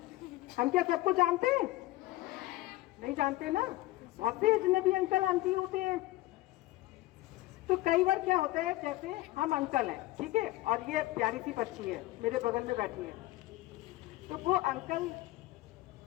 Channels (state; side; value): quieter; right; 17.7 dB